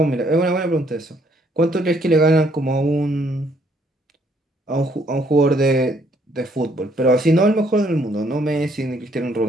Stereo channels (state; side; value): normal; both; correlation 0.67